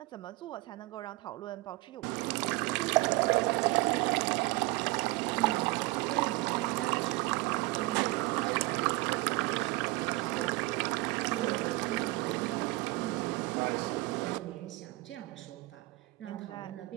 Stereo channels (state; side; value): quieter; left; 22.0 dB